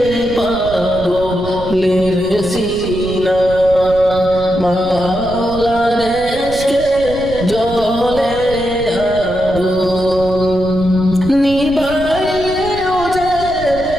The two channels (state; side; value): noise; right; rumble, 12 dB below the sound